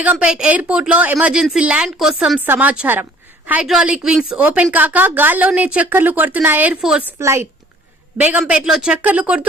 ఎయిర్పోర్ట్ లో ఎమర్జెన్సీ ల్యాండ్ కోసం సమాచారం. హైడ్రాలిక్ వింగ్స్ ఓపెన్ కాక గాల్లోనే చక్కర్లు కొడుతున్న ఎయిర్ ఫోర్స్ ఫ్లైట్. బేగంపేట్ లో చక్కర్లు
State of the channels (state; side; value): normal; both; correlation 0.55